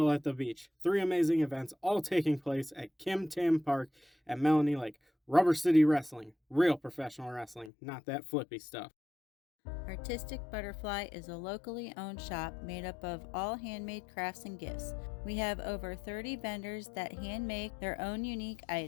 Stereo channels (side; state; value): right; drops out; at 7.7 s